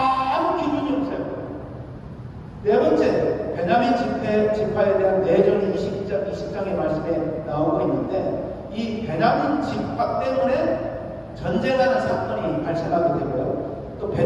기준이 없어요. 네 번째, 베냐민 지파에 대한 내전이 20장의 말씀에 나오고 있는데 이 베냐민 지파 때문에 전쟁하는 사건이 발생하게 되고요. 또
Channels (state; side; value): identical; both; correlation 1.00